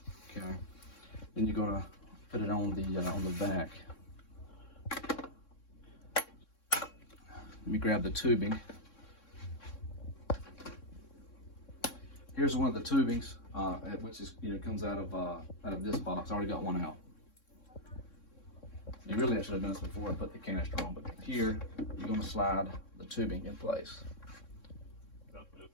Okay. Then you're gonna put it on the vac. Let me grab the tubing. Here's one of the tubings, which is comes out of this box. I already got one out. And really, I should have done this before I put the canister on. But here, you're going to slide the tubing in place.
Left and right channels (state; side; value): late; right; 3.6 ms